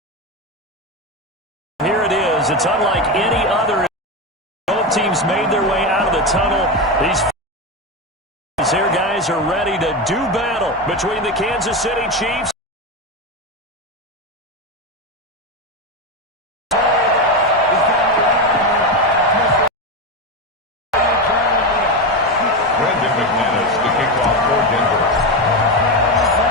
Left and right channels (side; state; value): both; normal; correlation 0.14